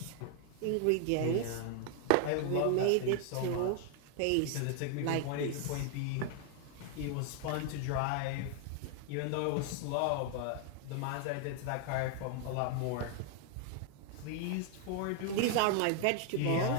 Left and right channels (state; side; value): different; both; correlation 0.00